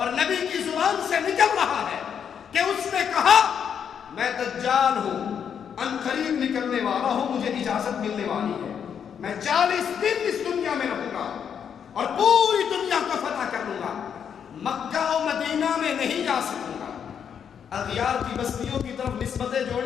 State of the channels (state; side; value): quieter; right; 7.8 dB